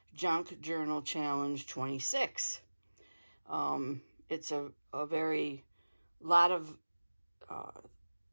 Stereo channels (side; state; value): both; inverted; correlation -1.00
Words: Junk Journal Challenge 26. It's a very lot of